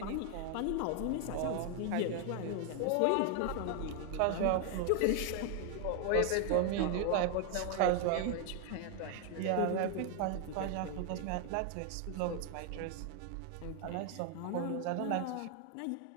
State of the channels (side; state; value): both; different; correlation 0.01